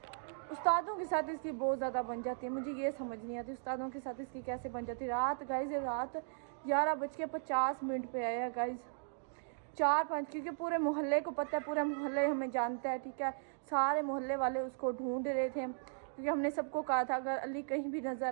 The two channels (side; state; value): left; silent; digital silence